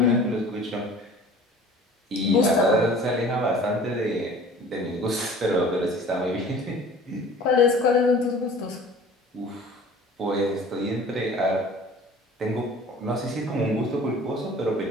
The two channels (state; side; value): normal; both; correlation 0.45